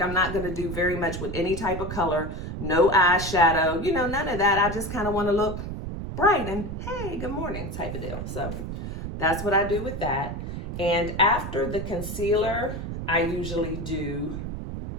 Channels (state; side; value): noise; right; rumble, 6 dB below the sound